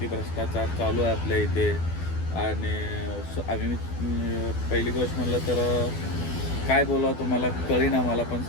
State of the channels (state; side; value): late; right; 12 ms